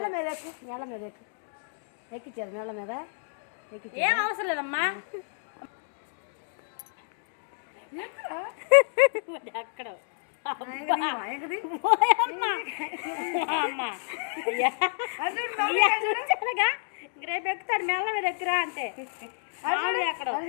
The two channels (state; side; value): silent; right; digital silence